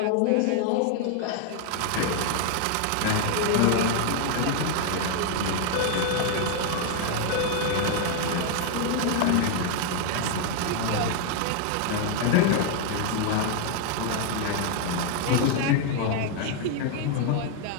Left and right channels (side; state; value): both; different; correlation 0.00